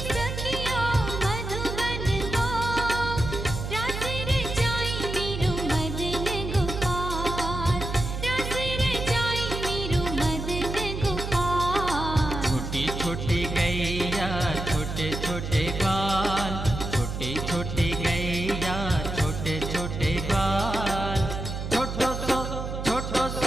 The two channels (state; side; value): noise; right; hum, 5 dB below the sound